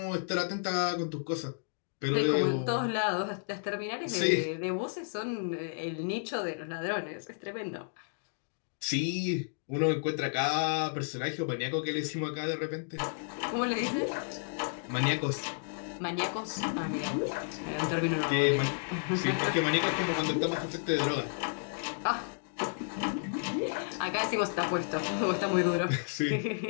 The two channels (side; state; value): right; silent; digital silence